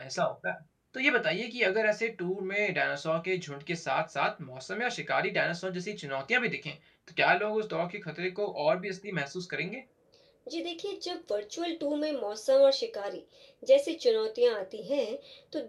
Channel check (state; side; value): identical; both; correlation 1.00